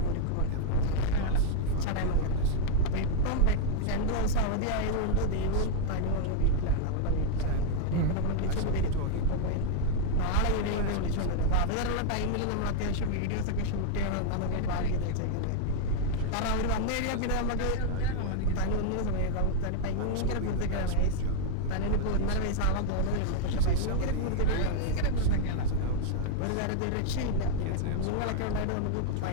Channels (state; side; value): different; both; correlation 0.00